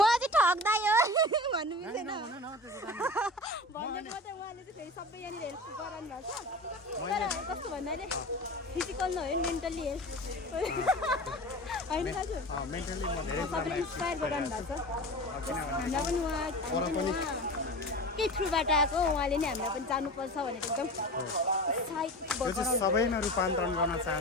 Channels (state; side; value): normal; both; correlation 0.33